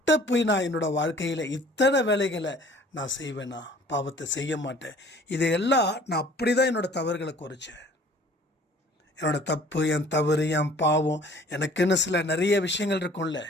போய் நான் என்னோடய வாழ்க்கையில் இத்தனை வேலைகளை நான் செய்வேனா, பாவத்தை செய்ய மாட்டேன். இதையெல்லாம் நான் அப்படி தான் என்னோடய தவறுகளை குறைச்சேன். என்னோடய தப்பு, என் தவறு, என் பாவம், எனக்குன்னு சில நிறைய விஷயங்கள் இருக்கும்ல,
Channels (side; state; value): both; normal; correlation 0.52